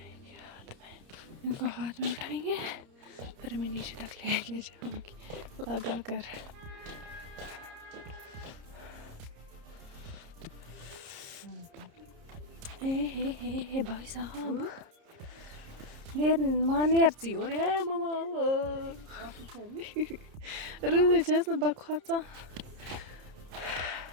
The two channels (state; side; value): late; left; 30 ms